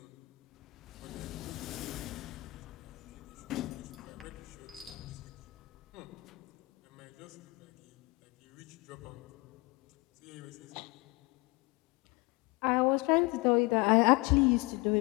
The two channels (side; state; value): right; quieter; 24.5 dB